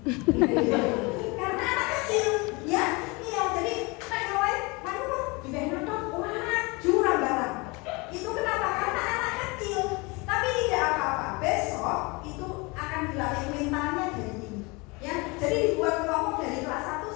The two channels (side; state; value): right; quieter; 27.0 dB